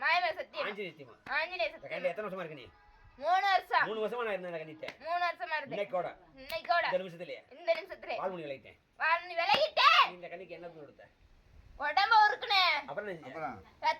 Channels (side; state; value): both; identical; correlation 1.00